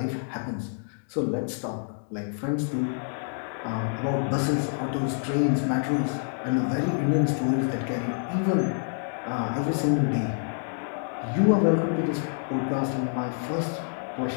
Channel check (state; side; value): silent; right; digital silence